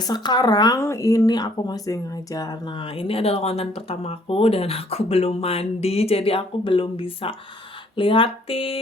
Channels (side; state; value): both; normal; correlation 0.61